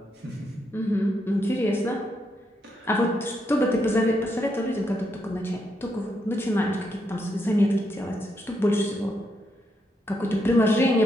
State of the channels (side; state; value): both; normal; correlation 0.79